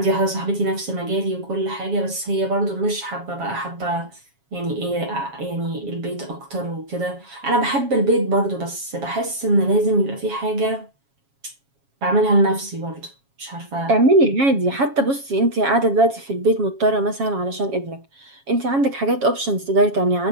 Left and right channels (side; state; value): left; late; 7.3 ms